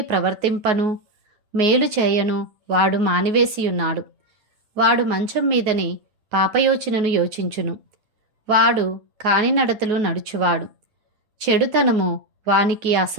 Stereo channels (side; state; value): left; late; 9.4 ms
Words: ప్రవర్తింపను మేలు చేయను వాడు మానివేసియున్నాడు. వాడు మంచం మీదని పాపయోచనను యోచించును. వాడు కానినడతలు నడుచువాడు. చెడుతనము వానికి